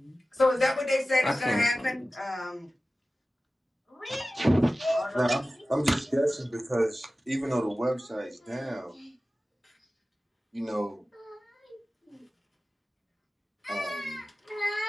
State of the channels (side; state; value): both; normal; correlation 0.96